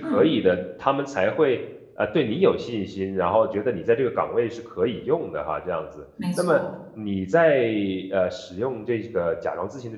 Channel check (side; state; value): both; identical; correlation 1.00